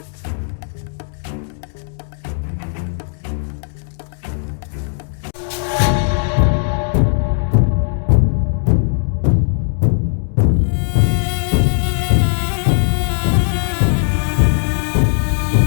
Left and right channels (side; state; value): right; silent; digital silence